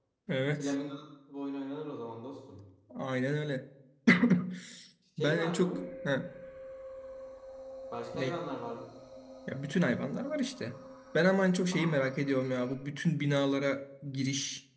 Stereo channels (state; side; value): identical; both; correlation 1.00